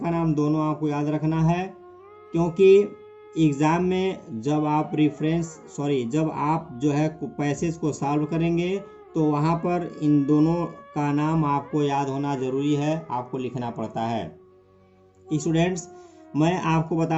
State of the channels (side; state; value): both; identical; correlation 1.00